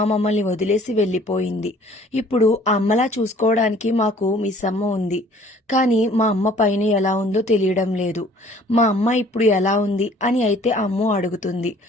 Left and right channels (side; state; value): both; normal; correlation 0.54